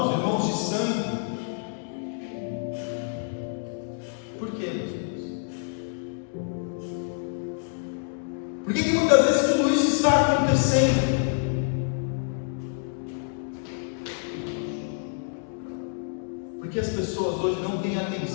de sangue? Por quê, meus irmãos? Por que muitas vezes tudo isso está acontecendo? Porque as pessoas hoje não têm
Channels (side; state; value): right; silent; digital silence